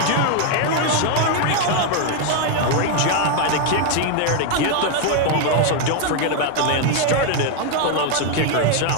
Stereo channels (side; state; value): both; different; correlation 0.01